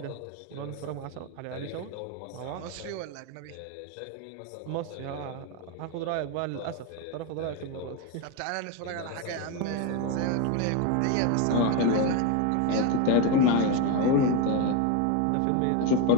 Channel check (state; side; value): different; both; correlation 0.03